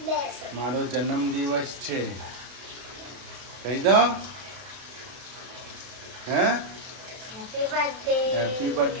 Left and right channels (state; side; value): late; left; 32 ms